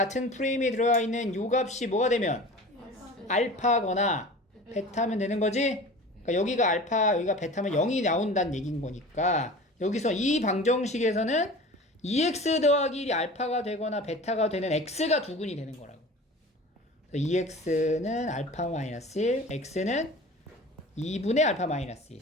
프레임에 들어가 있는 요 값이 뭐가 되면 알파거나 베타면 되는 거지? 그러니까 여기가 알파, 여기가 베타면 0이 나온다는 얘기인 거니까 여기서 이 방정식에서는 2x 더하기 1이 알파가 되거나 베타가 되는 x가 두근이 되는 거라고. 2x는 알파 마이너스 1, x는 2분의 알파 마이너스 1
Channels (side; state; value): both; normal; correlation 0.38